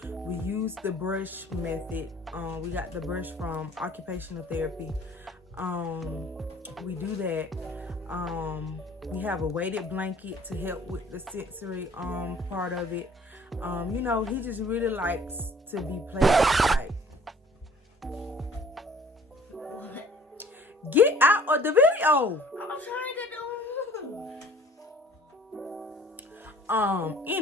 We use the brush method. We got the brush from occupational therapy. We do that. We have a weighted blanket to help with the sensory part of it. He just really likes to be played with. Get out of the video. I'm trying to do.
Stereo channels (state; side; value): normal; both; correlation 0.53